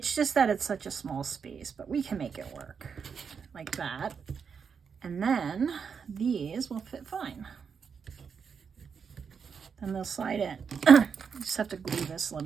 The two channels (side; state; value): left; quieter; 6.3 dB